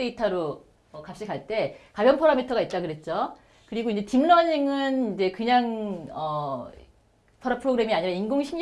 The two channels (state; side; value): identical; both; correlation 1.00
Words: 값이 갈 때 가변 파라미터가 있다 그랬죠. 그리고 이제 딥러닝은 이제 그냥 프로그램이 아니라